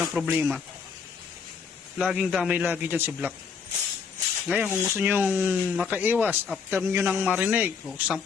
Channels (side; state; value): right; quieter; 6.0 dB